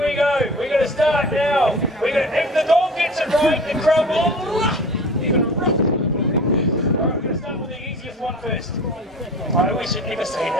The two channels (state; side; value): normal; both; correlation 0.39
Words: go. We're going to start now. If the dog gets it right, the crowd will. You're going to rock. Alright, we're going to start with the easiest one first. I always should never say